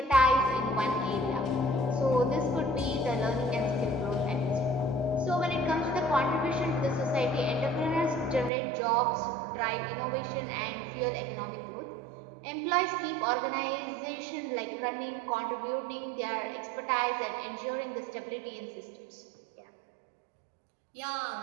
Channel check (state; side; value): drops out; left; at 8.5 s